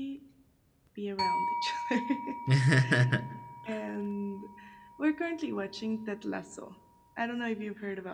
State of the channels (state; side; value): identical; both; correlation 1.00